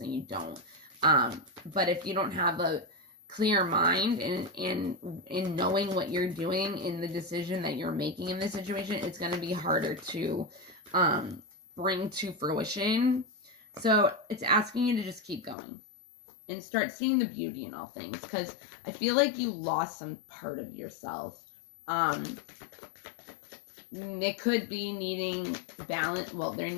you don't, but if you don't have clear mind and in knowing what you're doing in the decision that you're making in this situation, it's going to be harder to bring to fruition. So it's asking you to just keep going and start seeing the beauty in all things, because I feel like you lost some part of yourself. It could be needing balance. Well, there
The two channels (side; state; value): right; drops out; at 15.6 s